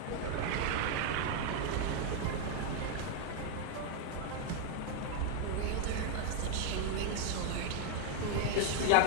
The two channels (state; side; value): different; both; correlation 0.00